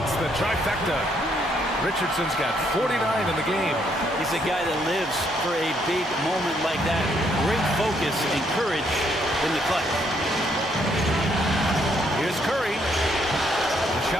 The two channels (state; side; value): normal; both; correlation 0.71